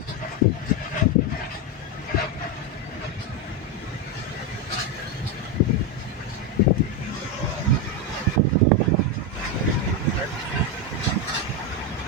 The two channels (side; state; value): both; normal; correlation 0.08